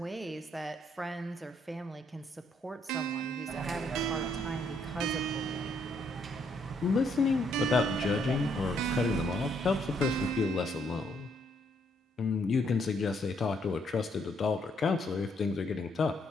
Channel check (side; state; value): both; normal; correlation 0.71